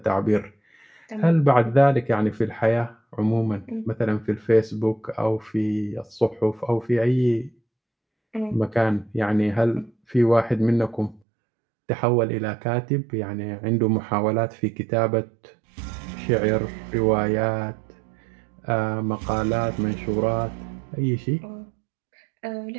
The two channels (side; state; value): left; drops out; at 11.2 s